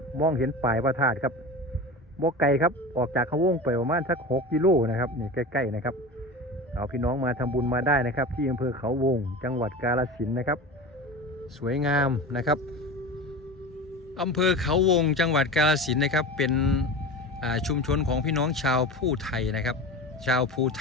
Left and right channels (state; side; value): normal; both; correlation 0.30